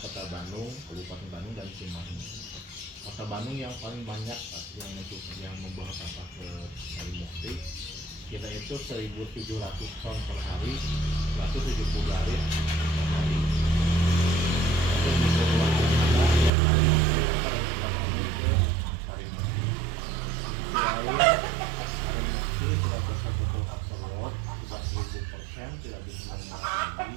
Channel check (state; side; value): drops out; left; at 16.5 s